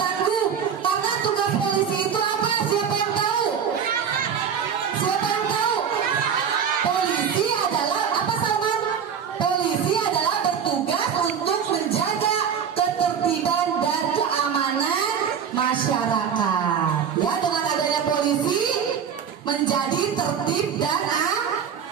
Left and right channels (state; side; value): quieter; left; 7.4 dB